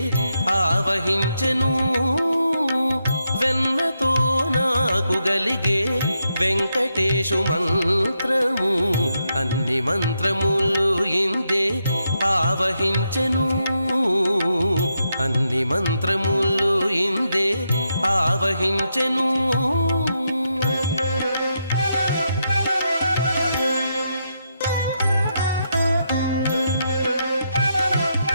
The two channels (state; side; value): inverted; both; correlation -0.82